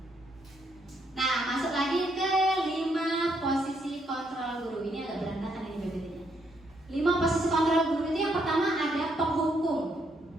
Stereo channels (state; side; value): normal; both; correlation 0.75